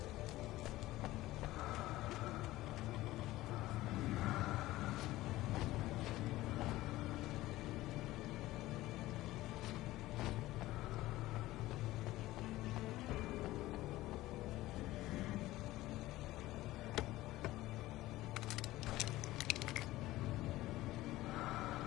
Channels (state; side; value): quieter; right; 17.0 dB